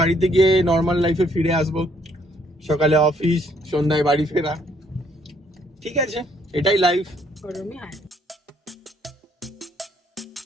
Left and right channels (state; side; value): normal; both; correlation 0.67